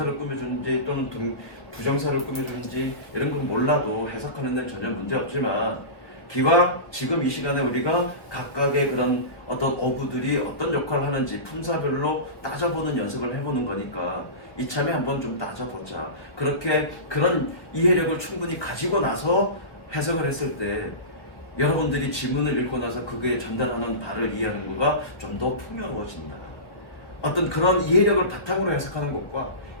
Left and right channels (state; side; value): late; right; 1.3 ms